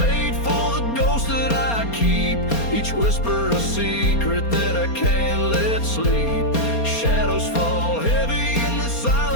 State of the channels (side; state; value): right; late; 4.3 ms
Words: for the ghost that I keep, each whisper a secret that I can't let sleep. Shadows fall heavy in the